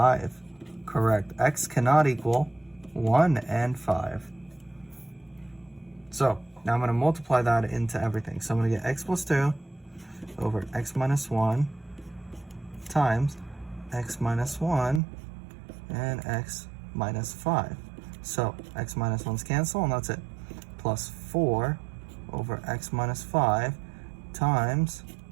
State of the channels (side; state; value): left; drops out; at 15.0 s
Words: Correct. X cannot equal 1 and 5. So now I'm going to multiply that into everything. So I'm going to get x plus 2 over x minus 1 times x minus 1 and x minus 5. So x minus 1's cancel, and that's it. Plus 4 over x minus 5 times